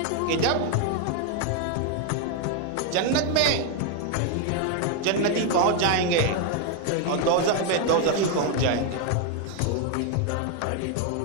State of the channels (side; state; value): both; different; correlation 0.01